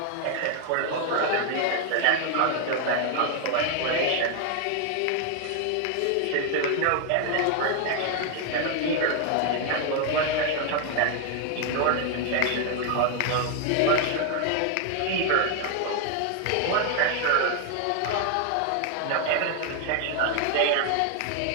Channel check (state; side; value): different; both; correlation 0.00